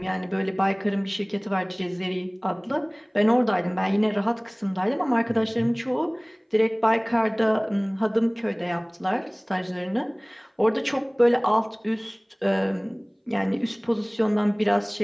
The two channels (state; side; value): identical; both; correlation 1.00